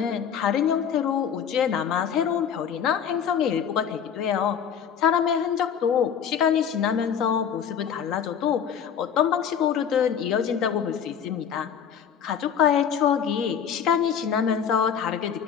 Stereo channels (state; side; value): quieter; right; 8.0 dB